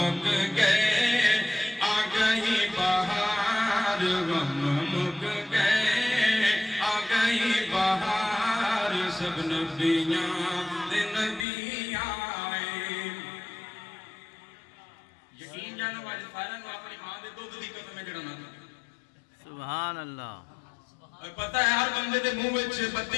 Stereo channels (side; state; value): right; drops out; at 11.5 s